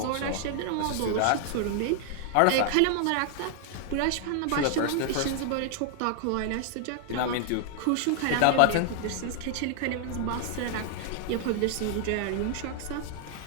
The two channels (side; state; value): both; different; correlation 0.00